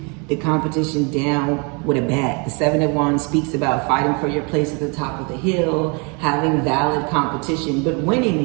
the competition down with a bat. The Seven of Wands speaks about fighting for your place at the top of the hill, having valid competition, but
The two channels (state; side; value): quieter; left; 32.6 dB